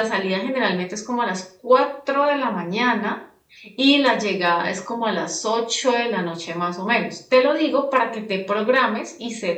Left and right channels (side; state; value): both; identical; correlation 1.00